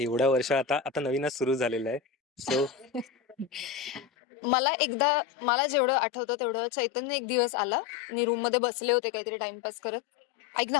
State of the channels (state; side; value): drops out; right; at 4.0 s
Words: वर्ष आता आता नवीनच सुरू झालेलं आहे. सो मला जेवढं आठवतं तेवढं, चैतन्य एक दिवस आला. मी रूम मध्ये बसले होते काहीतरी टाइमपास करत. ऐक